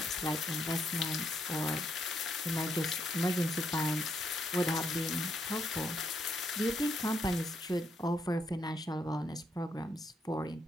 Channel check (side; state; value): both; normal; correlation 0.77